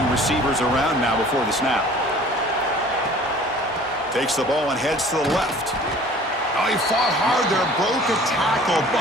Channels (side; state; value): both; normal; correlation 0.48